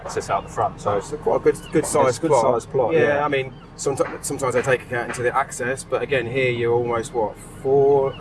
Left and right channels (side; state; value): both; identical; correlation 1.00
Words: out the front. So it's quite a good sized plot. Good sized plot. I mean, sometimes they take account into the access, but again, here you're almost